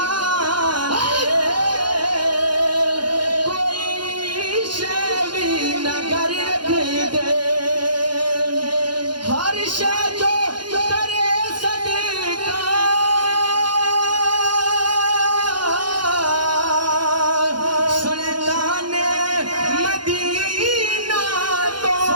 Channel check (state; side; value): late; left; 0.71 ms